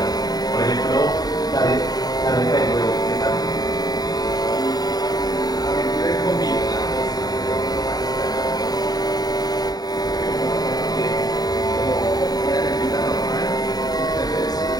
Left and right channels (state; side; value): late; right; 0.19 ms